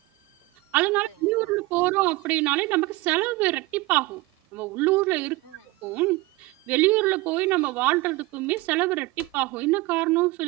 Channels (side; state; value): left; quieter; 21.2 dB